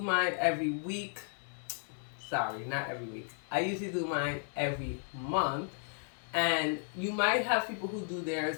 every week. Sorry, not every week. I usually do mine every month. And you might have people who do theirs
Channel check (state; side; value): silent; right; 55 dB below the other